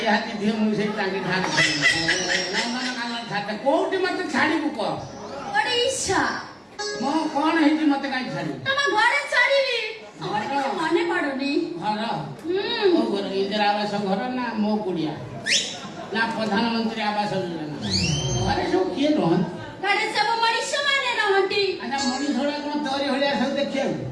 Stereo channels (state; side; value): identical; both; correlation 1.00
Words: ହାତୀ ଝିଅ ମୁଁ ସେଇ ତାଙ୍କେ ଛାଡ଼ି ନନ୍ଦନକାନନ ଛାଡିଦେ କୋଉଠି ମତେ ଛାଡ଼ିବୁ କହ ଓଡ଼ିଶା ମୁଁ କଣ ହେଇଛି ମତେ କାହିଁ ଛାଡ଼ିବୁ ତମ ଘରେ ଛାଡିବି ଆମର କିଛି ମନେ ପଡୁନି ଘର ମୋ ଘର ଇନ୍ଦିରା ଆବାସ ଘର ନା ମୋ କୁଡ଼ିଆ ନା ପ୍ରଧାନମନ୍ତ୍ରୀ ଆବାସ ଯୋଜନା ଘରେ ସବୁ କିଏ ରହନ୍ତି ଘରେ ସବୁ ମଣିଷ ମାନେ ରହନ୍ତି ଆଚ୍ଛା ମଣିଷ ଗୁଡ଼ା କଣ ତୋରି ଭଳିଆ ସବୁ ଦେଖିବାକୁ